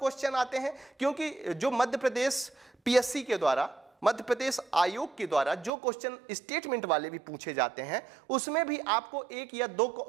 आते हैं, क्योंकि जो मध्य प्रदेश पीएससी के द्वारा मध्य प्रदेश आयोग के द्वारा जो क्वेश्चन स्टेटमेंट वाले भी पूछे जाते हैं उसमें भी आपको एक या दो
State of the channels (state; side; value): drops out; left; at 5.7 s